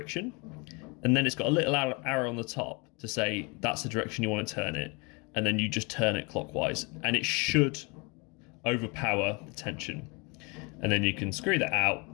and then it's got a little arrow on the top to say that's the direction you want to turn it, and then you just turn it clockwise, and it should overpower the tension, and then you can screw that out,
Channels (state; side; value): quieter; right; 29.9 dB